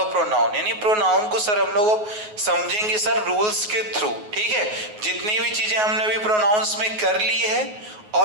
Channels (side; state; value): left; late; 9.5 ms